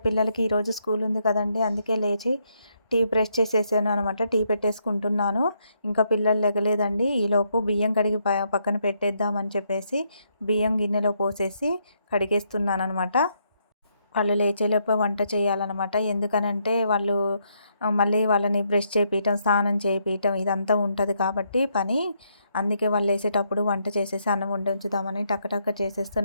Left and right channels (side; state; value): both; inverted; correlation -0.75